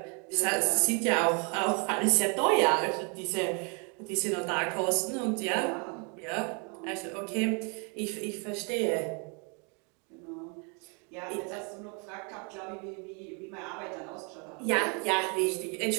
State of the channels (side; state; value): left; quieter; 35.4 dB